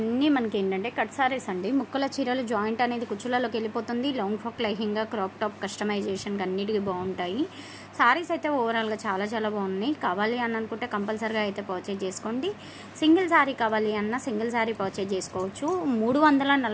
మనకి ఏంటంటే కట్ సారీస్ అండి. ముక్కల చీరలు జాయింట్ అనేది కుచ్చులలోకి వెళ్ళిపోతుంది. Long frock, lehenga, crop top కస్టమైజేషన్కి అన్నిటికీ బాగుంటాయి. సారీస్ అయితే ఓవరాల్గా చాలా చాలా బాగున్నాయి. కావాలి అని అనుకుంటే కంపల్సరీగా అయితే పర్చేజ్ చేసుకోండి. సింగిల్ సారీ కావాలి అన్న సింగిల్ సారీ పర్చేజ్ చేసుకోవచ్చు.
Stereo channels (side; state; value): both; identical; correlation 1.00